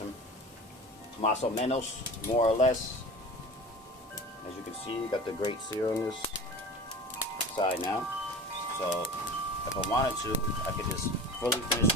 o menos, more or less. As you can see, you got the great sear on this side now. So if I wanted to, I could just fully finish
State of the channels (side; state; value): both; normal; correlation 0.36